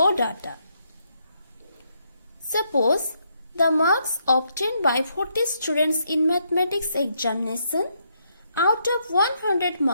data. Suppose the marks obtained by 40 students in mathematics examination out of 100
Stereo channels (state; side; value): inverted; both; correlation -0.76